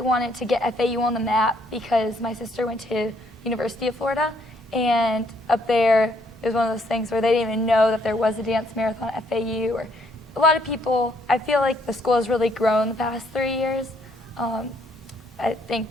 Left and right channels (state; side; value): normal; both; correlation 0.69